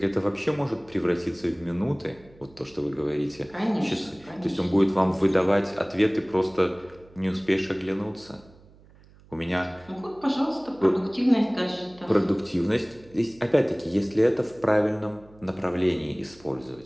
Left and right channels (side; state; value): right; noise; hum, 25 dB below the sound